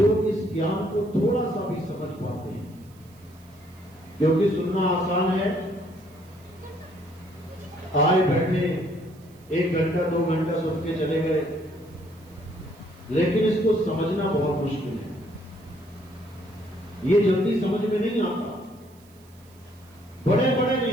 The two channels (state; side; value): noise; right; hiss, 28 dB below the sound